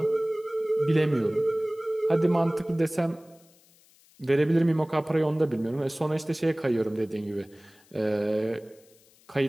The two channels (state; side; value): noise; left; hiss, 30 dB below the sound